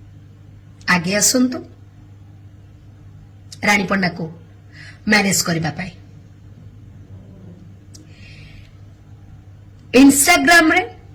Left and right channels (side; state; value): both; identical; correlation 1.00